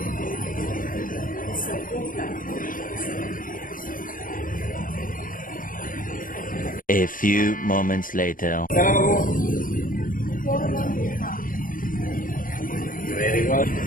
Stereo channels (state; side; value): late; right; 0.40 ms